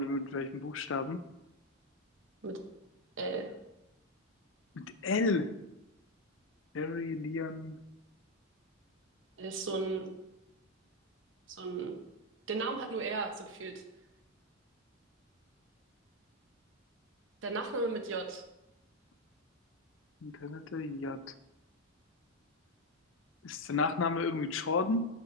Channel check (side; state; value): both; normal; correlation 0.05